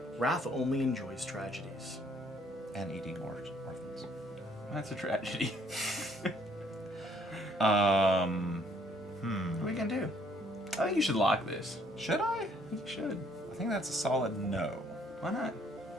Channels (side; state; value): both; normal; correlation 0.64